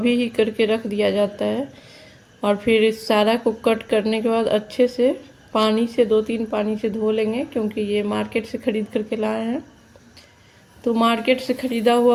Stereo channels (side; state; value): both; identical; correlation 1.00